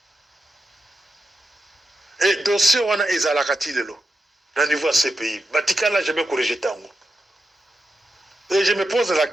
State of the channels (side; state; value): both; normal; correlation 0.88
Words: dossier wana ezalaka ti lelo na niveau ya CPI batikala jamais corrigé tango. Et je me pose la